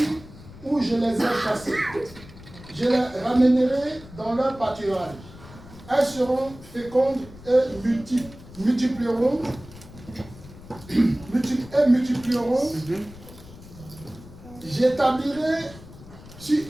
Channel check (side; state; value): left; noise; rumble, 18 dB below the sound